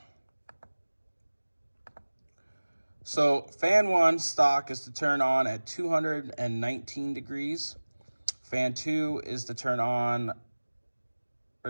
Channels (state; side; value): inverted; both; correlation -1.00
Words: So fan 1 stock is to turn on at 219 degrees. Fan 2 is to turn on,